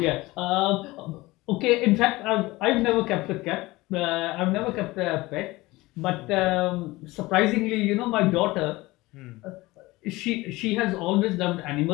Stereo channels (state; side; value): quieter; right; 20.3 dB